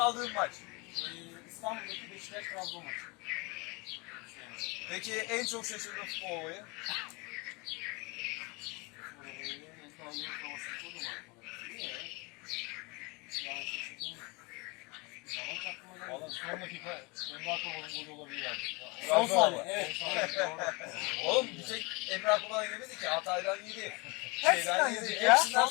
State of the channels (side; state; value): right; quieter; 27.5 dB